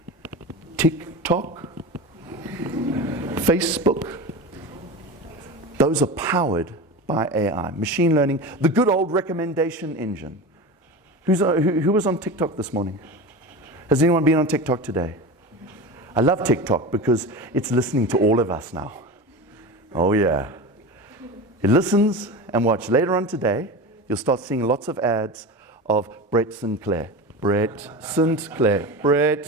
TikTok? Facebook? Those are powered by AI. Machine learning. The good old recommendation engine. Who was on TikTok this morning? Has anyone been on TikTok today? I love TikTok because it's listening to all of us now. Oh yeah. It listens and watch. Later on today, you'll start seeing lots of ads of Brett Sinclair. Brett Sinclair. Brett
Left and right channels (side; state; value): both; normal; correlation 0.27